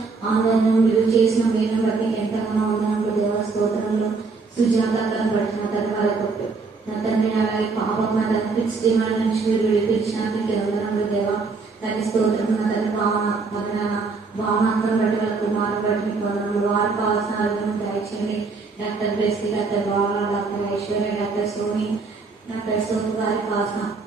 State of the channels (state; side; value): quieter; left; 4.3 dB